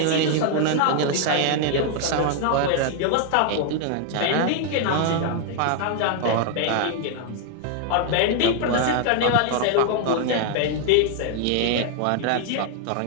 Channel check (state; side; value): different; both; correlation 0.00